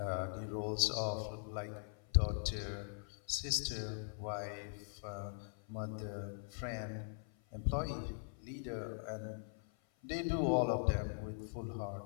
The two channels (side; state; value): right; silent; 50 dB below the other